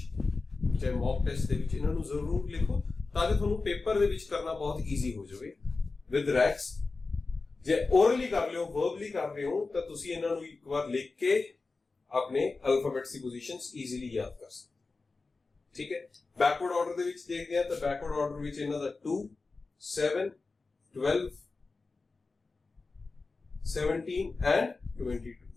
ਚਾਹੇ ਮੌਕ ਟੈਸਟ ਦੇ ਵਿੱਚ ਇਹਨਾਂ ਨੂੰ ਜ਼ਰੂਰ ਲਿਖੋ, ਤਾਂ ਕਿ ਤੁਹਾਨੂੰ ਪੇਪਰ ਦੇ ਵਿੱਚ ਕਰਨਾ ਬਹੁਤ ਈਜ਼ੀ ਹੋ ਜਾਵੇ ਵਿਦ ਰੈਕਸ। ਜੇ ਓਰਲੀ ਕਰ ਲਿਓ, ਵਰਬਲੀ ਕਰ ਰਹੇ ਹੋ, ਤਾਂ ਤੁਸੀਂ ਇਹਨਾਂ ਨੂੰ ਇੱਕ ਵਾਰ ਲਿਖ ਕੇ ਆਪਣੇ ਅਲਫਾਬੈਟਸ ਦੀ ਪੋਜੀਸ਼ਨਸ ਈਜ਼ੀਲੀ ਯਾਦ ਕਰ ਸਕਦੇ। ਠੀਕ ਹੈ, ਬੈਕਵਰਡ ਆਰਡਰ ਦੇ ਵਿੱਚ ਦੇਖਦੇ ਹਾਂ ਤਾਂ ਬੈਕਵਰਡ ਆਰਡਰ ਵਿੱਚ ਇਹਨਾਂ ਦਾ 2, 7, 12, 17 and 22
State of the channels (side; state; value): right; quieter; 3.9 dB